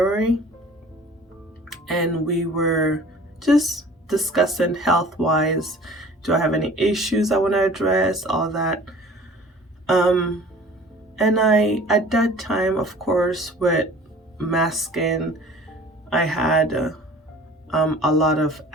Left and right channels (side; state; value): both; normal; correlation 0.46